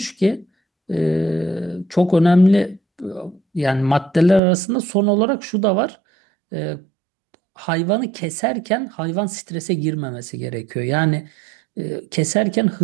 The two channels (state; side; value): drops out; left; at 4.4 s